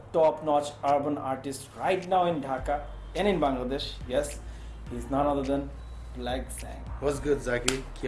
top-notch urban artists right now in Dhaka and in Bangladesh. Yes, he's none other than Black Sang. What's good, Zaki? কি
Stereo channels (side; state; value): both; identical; correlation 1.00